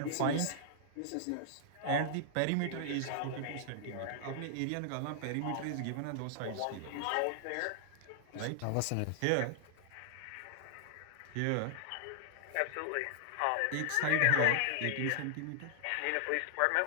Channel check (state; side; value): different; both; correlation 0.00